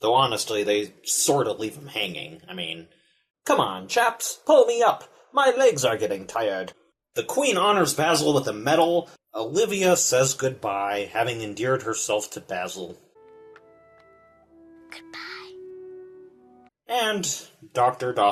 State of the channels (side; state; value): both; identical; correlation 1.00